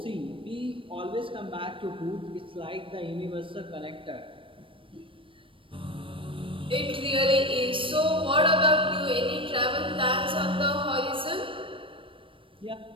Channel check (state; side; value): late; left; 0.25 ms